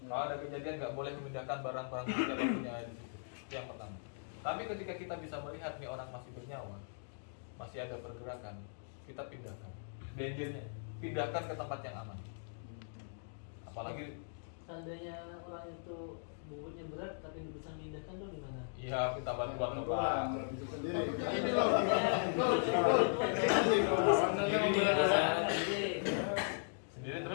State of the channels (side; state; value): right; silent; digital silence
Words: Kalau ada kejadian nggak boleh memindahkan barang-barang yang kita punya di situ. Itu yang pertama. Tapi ketika kita bisa melihat nih orang masih bernyawa, masih ada pergerakan, kita pindahkan. Dangernya, pindahkan ke tempat yang aman. Apalagi Seandainya orang itu bobotnya berat tapi bisa memindahkan tuh gimana? iya kita bantuan ke Pak. Bisa sendiri. Ini Iya. Sendiri